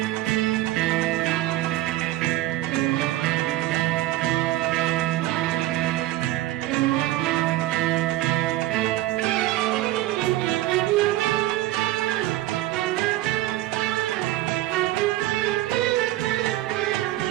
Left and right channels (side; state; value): left; quieter; 16.1 dB